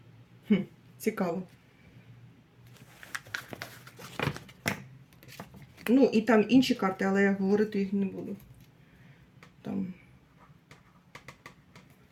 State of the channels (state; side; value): identical; both; correlation 1.00